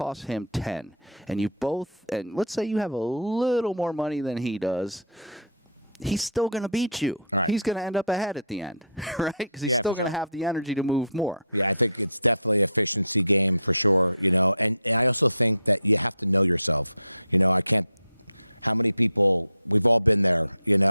All right. Yeah, for sure. Yeah, I think it's definitely an efficiency game for sure, and I also think that you have to know yourself. How many people, we've all been there,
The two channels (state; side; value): inverted; both; correlation -0.51